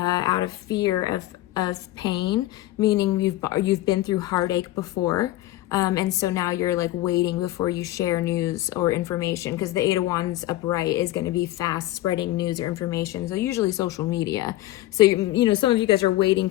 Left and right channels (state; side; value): quieter; right; 16.0 dB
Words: of fear of pain, meaning you've been through heartache before. And so now you're like waiting before you share news or information, because the Eight of Wands upright is going to be fast spreading news or information. So usually social media. So, you know, some of you guys are waiting